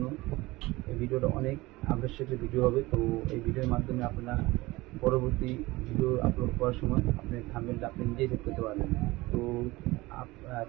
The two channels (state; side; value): quieter; left; 20.4 dB